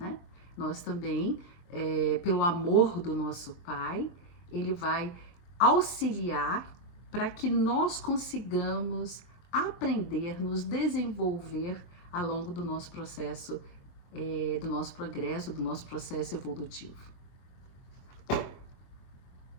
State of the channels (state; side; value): late; right; 23 ms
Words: Nós também, pelo amor do nosso Pai, ele vai auxiliar para que nós consigamos aprender, nos desenvolver ao longo do nosso processo, do nosso progresso, do nosso processo evolutivo.